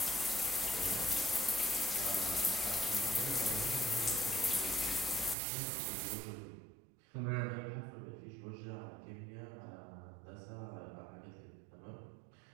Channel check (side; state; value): left; drops out; at 5.4 s